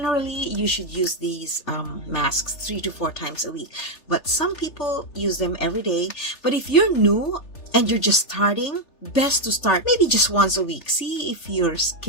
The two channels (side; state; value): right; late; 3.4 ms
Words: you should use these masks 3 to 4 times a week. But some people use them every day. But if you're new and you're just starting, best to start maybe just once a week. See if your